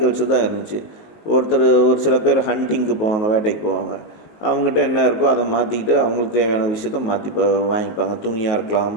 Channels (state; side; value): late; right; 19 ms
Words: தான் இருந்துச்சு. ஒரு சில பேர் ஹண்டிங்க்கு போவாங்க, வேட்டைக்கு போவாங்க. அவங்ககிட்ட என்ன இருக்கோ அதை மாற்றிக்கிட்டு அவங்களுக்கு தேவையான விஷயத்த மாற்றி வாங்கிப்பாங்க. துணியாக இருக்கலாம்,